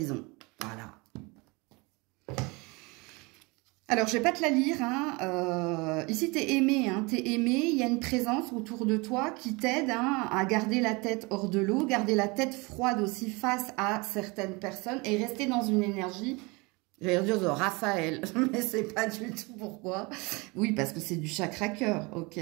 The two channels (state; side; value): quieter; left; 26.6 dB